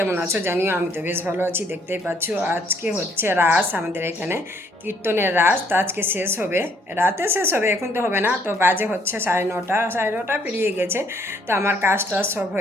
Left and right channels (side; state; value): both; normal; correlation 0.66